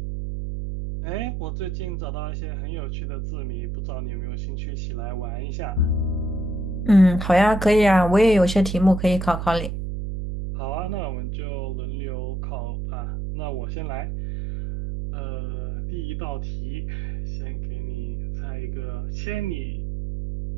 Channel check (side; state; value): right; noise; hum, 3 dB below the sound